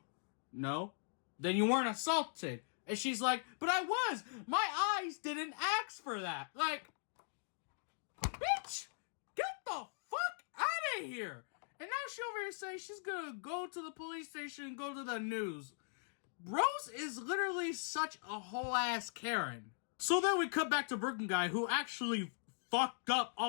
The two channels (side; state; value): right; silent; digital silence